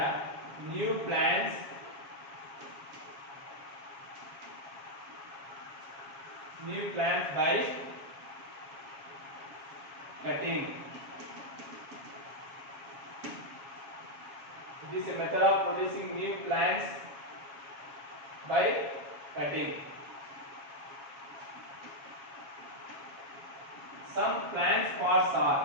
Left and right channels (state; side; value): late; left; 7.2 ms